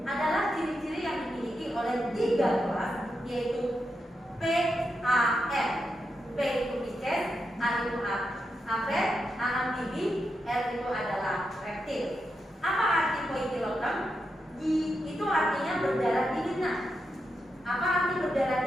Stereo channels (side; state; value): both; normal; correlation 0.86